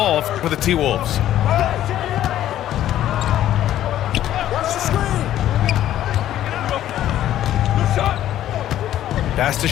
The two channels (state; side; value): quieter; right; 12.3 dB